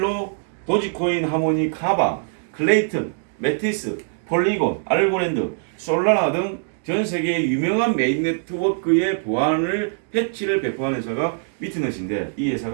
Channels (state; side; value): silent; left; digital silence